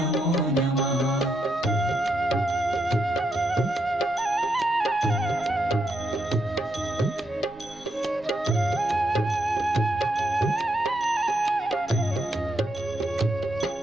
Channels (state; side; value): noise; right; rumble, 24 dB below the sound